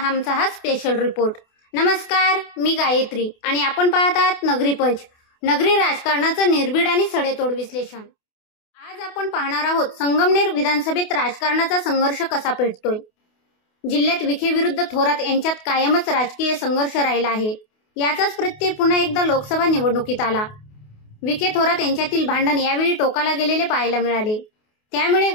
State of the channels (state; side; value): late; right; 28 ms